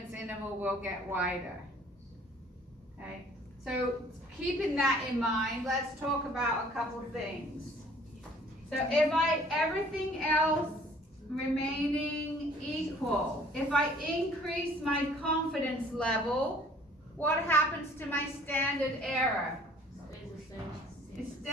interval will get wider. Okay, so keeping that in mind, let's talk about a couple things. So if everything else remaining equal, if I increase my confidence level, what happens to my standard error? It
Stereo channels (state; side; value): normal; both; correlation 0.55